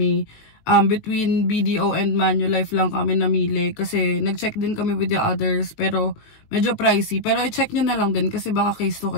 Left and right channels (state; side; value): late; right; 19 ms